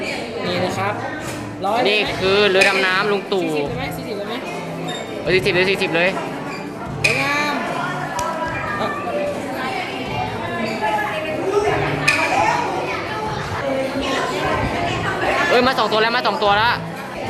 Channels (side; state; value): both; identical; correlation 1.00